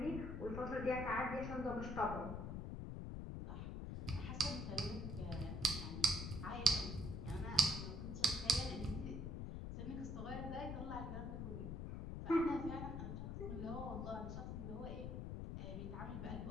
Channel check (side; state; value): left; noise; rumble, 4 dB below the sound